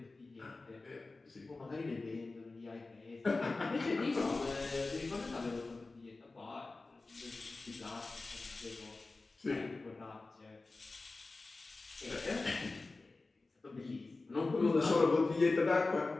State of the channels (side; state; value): right; quieter; 3.5 dB